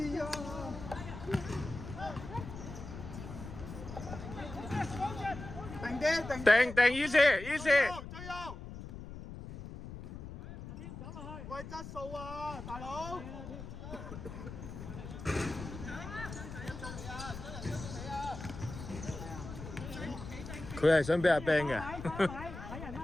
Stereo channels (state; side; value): noise; left; rumble, 10 dB below the sound